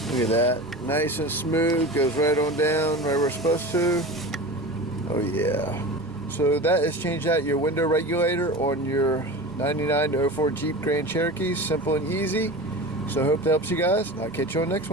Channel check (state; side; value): normal; both; correlation 0.31